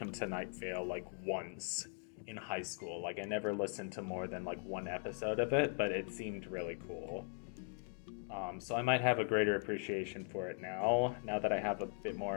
to Night Vale like once in high school. Like I never listened to more than like one episode of it, but it seemed really cool. So I might have a greater appreciation for it now that I have a bit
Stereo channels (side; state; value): right; silent; 51 dB below the other